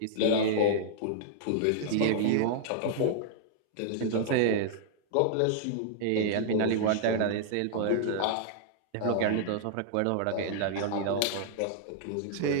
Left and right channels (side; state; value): both; different; correlation -0.01